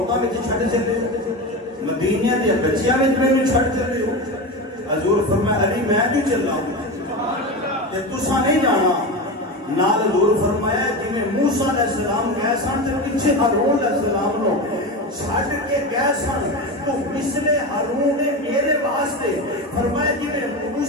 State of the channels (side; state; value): both; normal; correlation 0.22